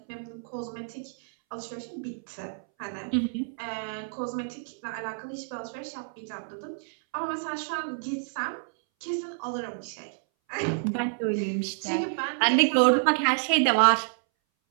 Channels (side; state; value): left; silent; 59 dB below the other